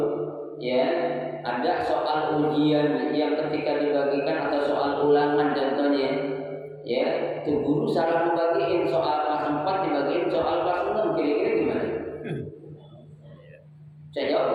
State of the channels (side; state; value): both; identical; correlation 1.00